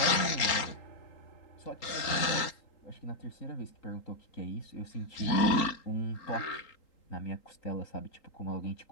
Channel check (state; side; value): late; right; 3.8 ms